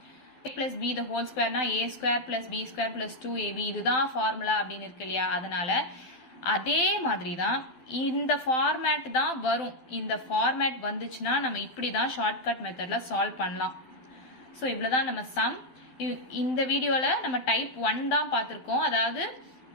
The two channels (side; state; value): right; late; 12 ms